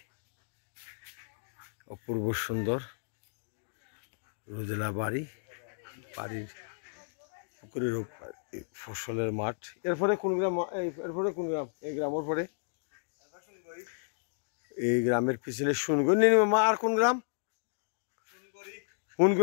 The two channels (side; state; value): right; silent; digital silence